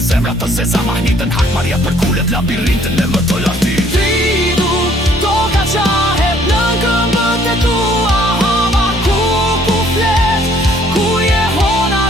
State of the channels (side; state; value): both; normal; correlation 0.61